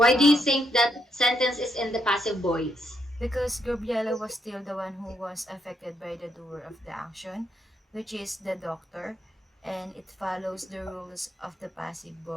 do you Um, think that sentence is in the passive voice? because Gabriela was still the one who was affected by the doer of the action, which is the doctor, and it follows the rules of the passive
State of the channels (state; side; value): normal; both; correlation 0.77